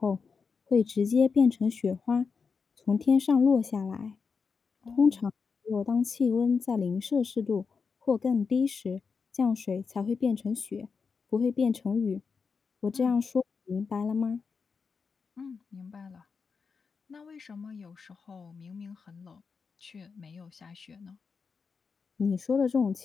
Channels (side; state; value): right; quieter; 5.3 dB